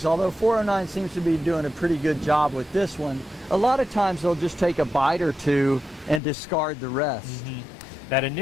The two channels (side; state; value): right; drops out; at 6.2 s